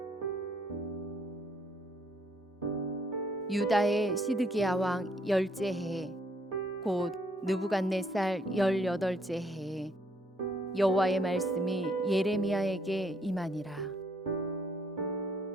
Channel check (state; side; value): normal; both; correlation 0.68